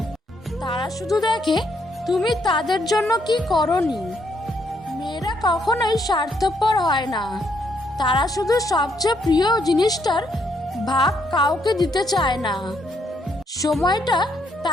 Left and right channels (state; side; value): normal; both; correlation 0.73